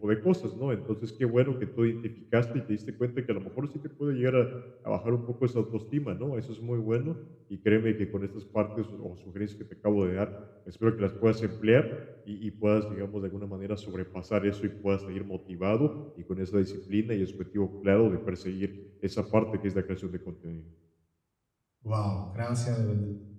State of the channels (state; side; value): identical; both; correlation 1.00